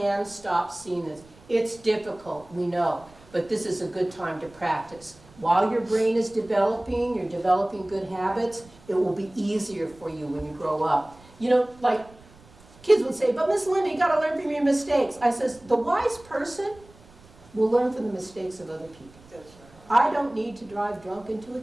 stop seeing this. It's difficult, we know, but this is a good time to practice. While your brain is developing, you're developing good habits, it will be easier for you when you grow up. You know, like kids would say, but Miss Linda, you gotta learn from your mistakes. I says, the wise person will learn from the mistakes of other people. I don't need to drive drunk into a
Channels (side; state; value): right; noise; rumble, 25 dB below the sound